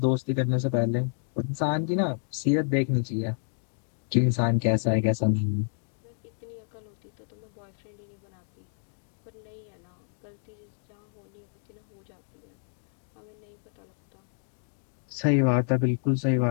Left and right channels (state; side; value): silent; right; digital silence